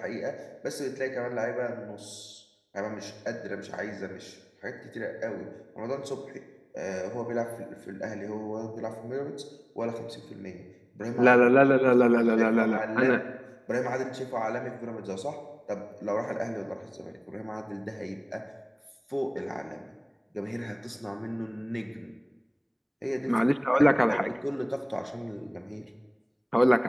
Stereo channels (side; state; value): both; identical; correlation 1.00